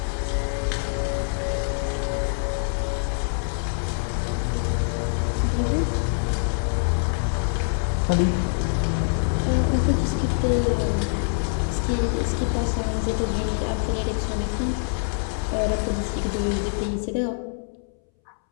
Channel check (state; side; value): silent; right; 62 dB below the other